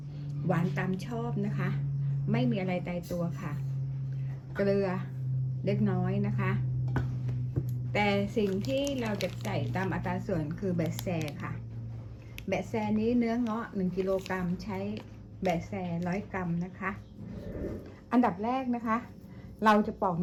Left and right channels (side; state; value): both; identical; correlation 1.00